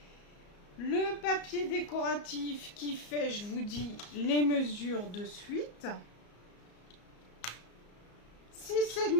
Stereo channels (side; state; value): right; late; 34 ms